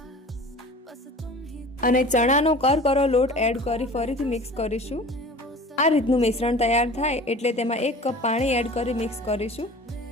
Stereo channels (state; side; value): normal; both; correlation 0.41